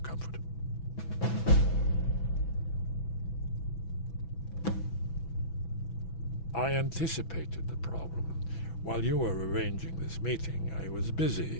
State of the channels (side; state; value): right; late; 6.1 ms